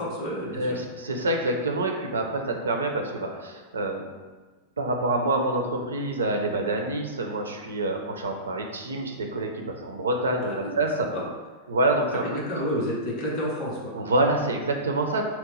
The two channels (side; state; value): both; inverted; correlation -0.33